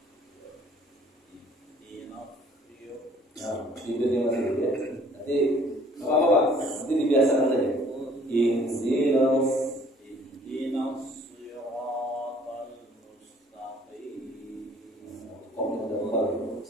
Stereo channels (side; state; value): both; normal; correlation 0.57